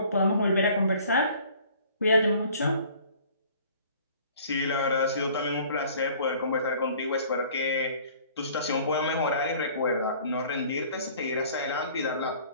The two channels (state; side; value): inverted; both; correlation -0.52